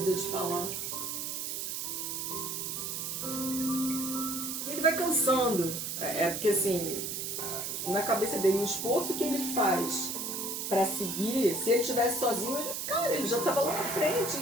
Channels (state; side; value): noise; right; hiss, 3 dB below the sound